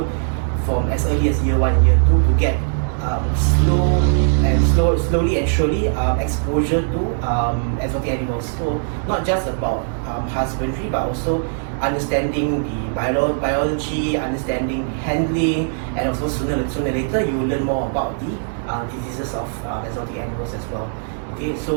from as early as year 1 and year 2 to get slowly and surely exposure to exotic animals. So not just about husbandry, but also understanding the biology, understanding handling, and also sooner or later you will learn more about the diseases of exotic animals as well. Okay,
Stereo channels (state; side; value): silent; left; digital silence